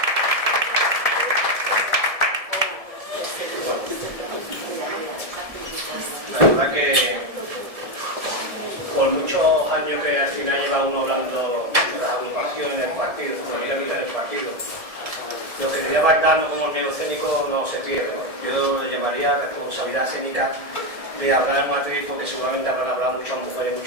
La verdad que por muchos años que al final lleva uno hablando de las agrupaciones del partido, en el partido, lo que diría Bardano como miedo escénico no se pierde, ¿no? Yo le llamaría responsabilidad escénica de hablar en matriz, porque seguramente habrán hablado muchas mujeres,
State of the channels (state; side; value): late; left; 1.7 ms